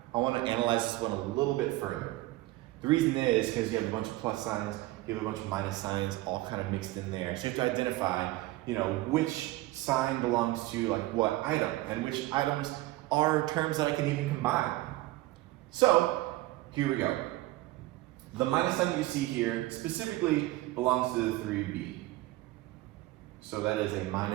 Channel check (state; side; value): quieter; left; 18.2 dB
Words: I want to analyze this one a little bit further. The reason is because you have a bunch of plus signs, you have a bunch of minus signs, all kind of mixed in there. So you have to identify, which sign belongs to like what item, and which items are terms that I can even combine. So, here we go. The minus sign that you see here specifically belongs to the 3b. So that is a